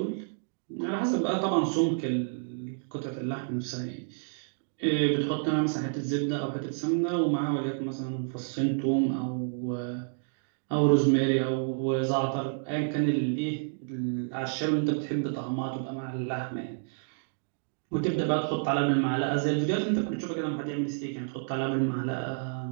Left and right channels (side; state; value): left; silent; digital silence